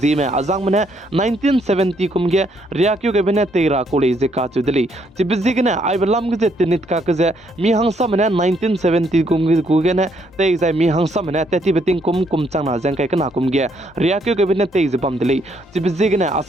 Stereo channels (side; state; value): both; normal; correlation 0.71